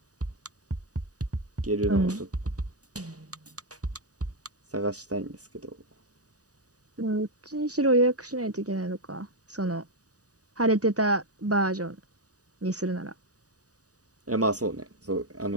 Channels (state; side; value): late; left; 0.67 ms